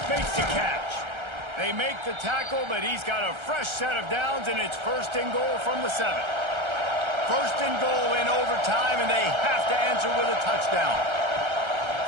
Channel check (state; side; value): late; left; 1.3 ms